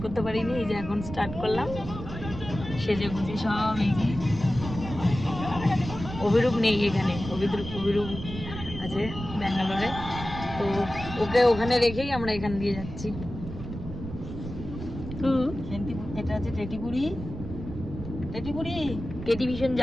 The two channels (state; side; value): noise; right; rumble, 9 dB below the sound